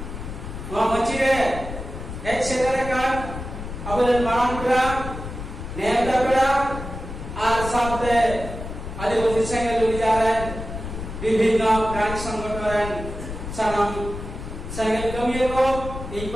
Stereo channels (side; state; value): left; noise; rumble, 8 dB below the sound